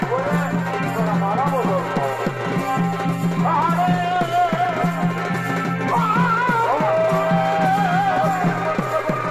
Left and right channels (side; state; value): both; identical; correlation 1.00